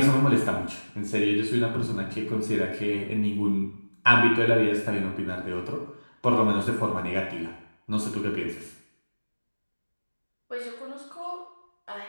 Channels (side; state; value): both; inverted; correlation -1.00